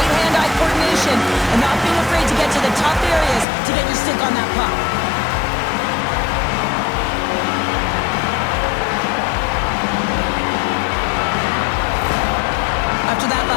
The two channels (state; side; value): drops out; right; at 3.5 s